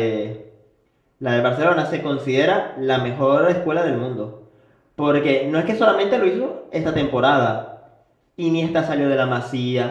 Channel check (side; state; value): both; identical; correlation 1.00